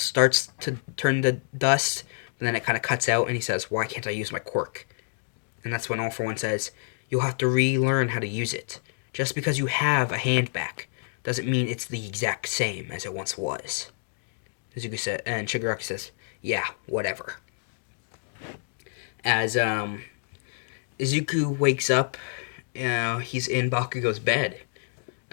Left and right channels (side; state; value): right; silent; digital silence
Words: to turn to dust, and then it kind of cuts out, and he says, why can't I use my quirk? And that's when All For One says, you'll have to relearn how to use it. Just because you have a hand back doesn't mean it's the exact same as it once was. Izuku said, and Shigaraki says, yeah, whatever. As Izuku wakes up, he's in Bakugo's bed.